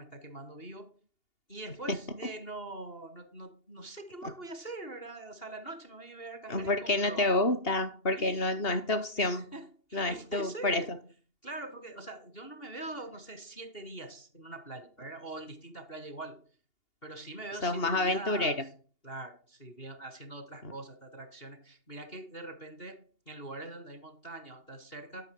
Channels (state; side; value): late; right; 2.8 ms